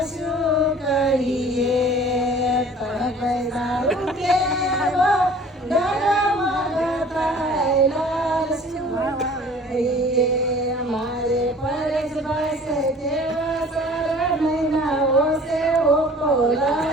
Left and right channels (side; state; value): both; normal; correlation 0.48